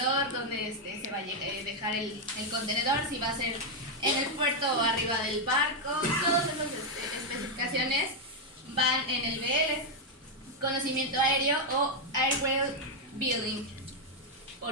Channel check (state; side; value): normal; both; correlation 0.01